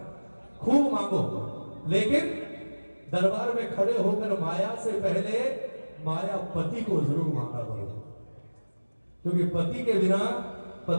खूब मांगो, लेकिन दरबार में खड़े होकर माया से पहले माया पति को जरूर मांगा करो। क्योंकि पति के बिना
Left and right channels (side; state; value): both; inverted; correlation -1.00